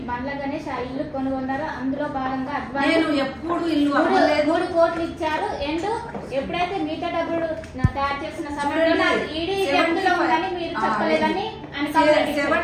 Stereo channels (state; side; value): identical; both; correlation 1.00